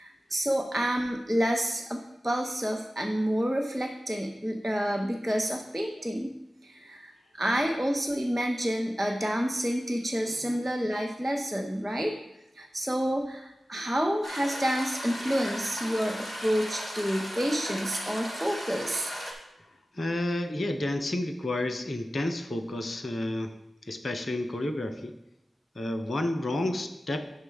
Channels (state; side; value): normal; both; correlation 0.94